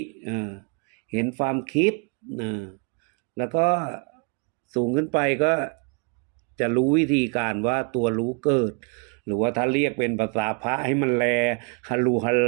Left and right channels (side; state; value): left; quieter; 35.8 dB